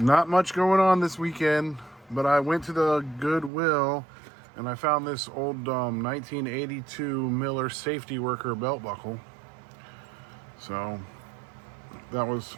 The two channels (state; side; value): drops out; left; at 3.5 s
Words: much going on this weekend, but I went to the Goodwill and I found this old 1982 Miller safety worker belt buckle. So that was